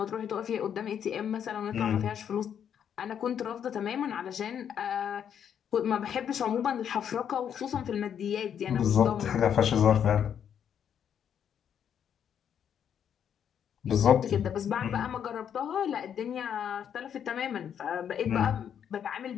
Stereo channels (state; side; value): quieter; right; 8.6 dB